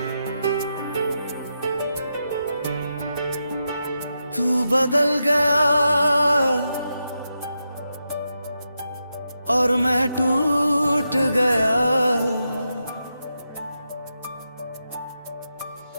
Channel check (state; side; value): inverted; both; correlation -0.87